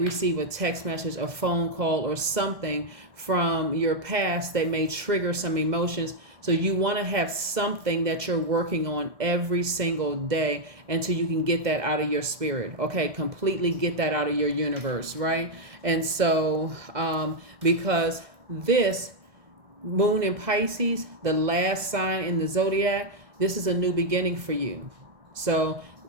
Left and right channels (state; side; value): late; left; 1.7 ms